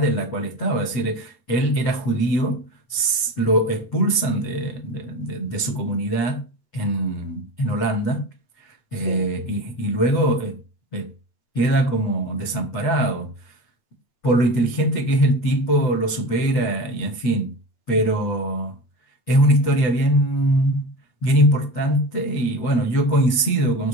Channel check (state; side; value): late; right; 8.0 ms